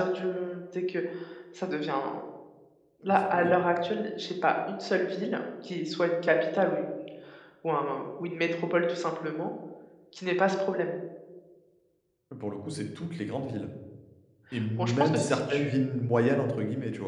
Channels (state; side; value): identical; both; correlation 1.00